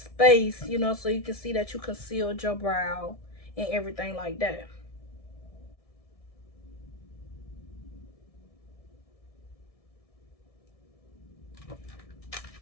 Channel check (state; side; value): late; right; 1.6 ms